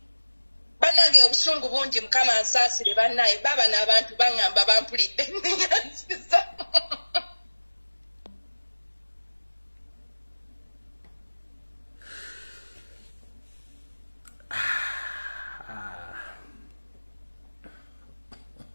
bannange obusungu bungi mukama nsaasire bannaye baba n'abantu baŋŋamba bampulidde nyansiza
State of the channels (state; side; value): inverted; both; correlation -1.00